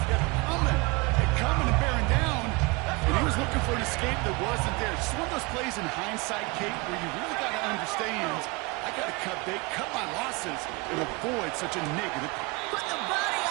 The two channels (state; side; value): quieter; left; 26.4 dB